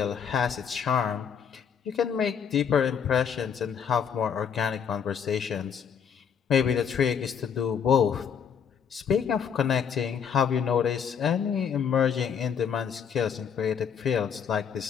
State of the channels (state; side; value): quieter; right; 7.4 dB